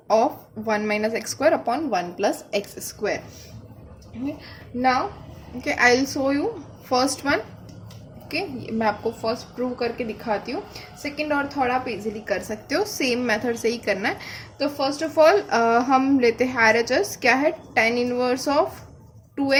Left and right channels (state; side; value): identical; both; correlation 1.00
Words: of 1 minus x square upon 1 plus x square. Okay, now okay, I'll show you first one. Okay, मैं आपको first prove करके दिखाती हूँ. Second और third आप easily कर सकते हो, सेम मेथड से ही करना है. तो फर्स्ट ऑफ ऑल हम लेते हैं RHS. क्या है, tan inverse of